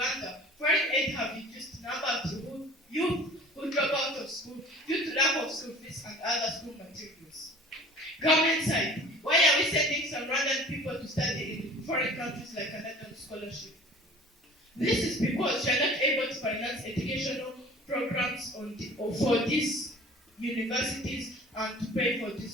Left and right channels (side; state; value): both; normal; correlation 0.45